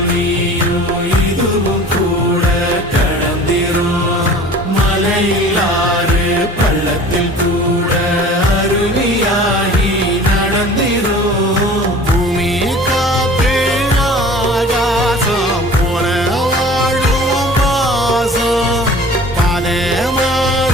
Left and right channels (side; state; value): both; normal; correlation 0.44